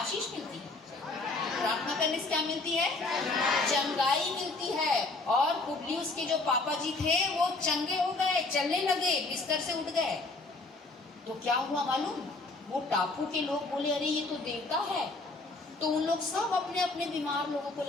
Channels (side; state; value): right; quieter; 3.3 dB